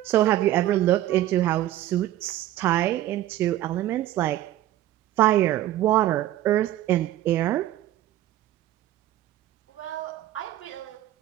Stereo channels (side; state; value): left; quieter; 13.8 dB